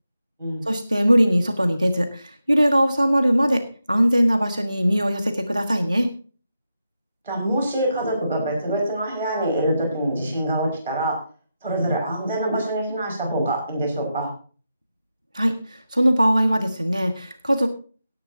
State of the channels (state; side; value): inverted; both; correlation -0.88